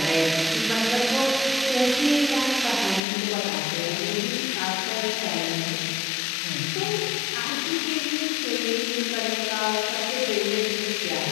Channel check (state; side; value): drops out; right; at 3.0 s